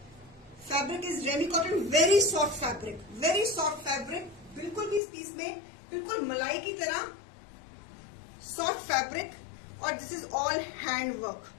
fabric is ramie cotton, very soft fabric, very soft fabric. बिल्कुल भी इस पीस में बिल्कुल मलाई की तरह सॉफ्ट फैब्रिक. और this is all hand work.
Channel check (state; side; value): drops out; right; at 5.0 s